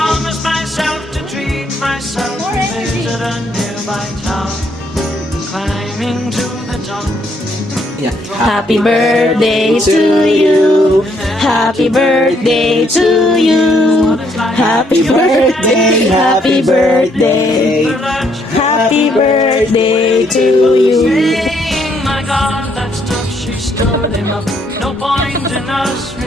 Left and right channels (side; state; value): both; normal; correlation 0.71